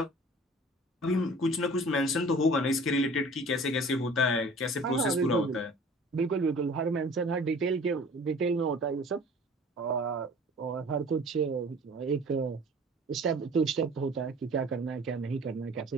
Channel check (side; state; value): both; normal; correlation 0.46